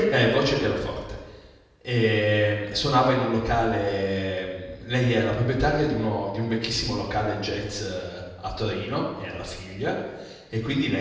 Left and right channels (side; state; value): both; identical; correlation 1.00